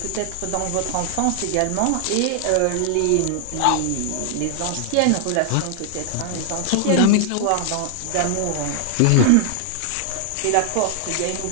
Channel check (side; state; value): both; different; correlation 0.00